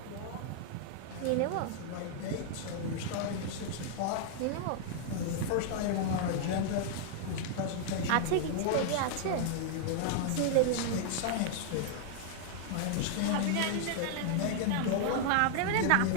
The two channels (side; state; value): both; different; correlation -0.01